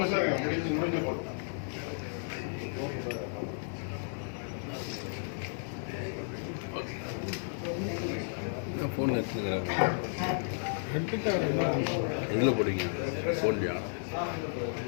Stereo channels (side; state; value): right; silent; digital silence